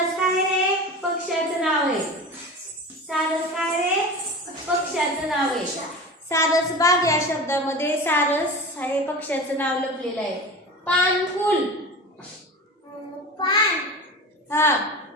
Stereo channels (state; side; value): normal; both; correlation 0.32